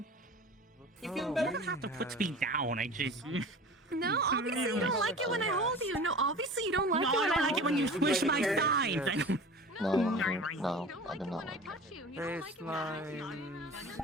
You feel You better? don't have to put me down. I just. No, obviously you don't like it when I hold you. No, obviously you don't like No, it I when don't I like it when you squish my thighs. I don't. No, I do not like it. Baselines,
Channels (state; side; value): normal; both; correlation 0.38